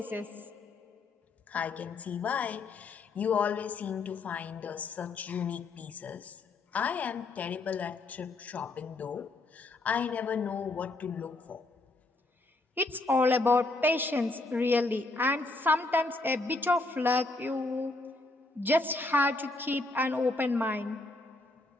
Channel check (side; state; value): right; quieter; 3.1 dB